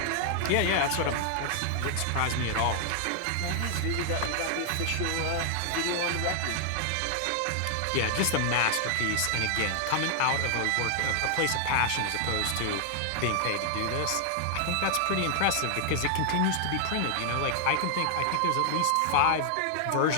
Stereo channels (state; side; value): different; both; correlation 0.00